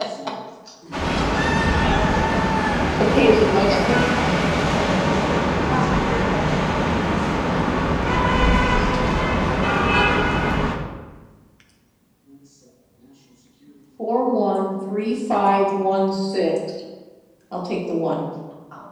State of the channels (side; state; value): both; identical; correlation 1.00